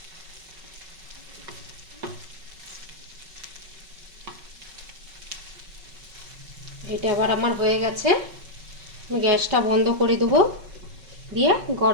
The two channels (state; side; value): late; left; 5.3 ms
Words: এটা আবার আমার হয়ে গেছে। আমি গ্যাসটা বন্ধ করে দেবো, দিয়ে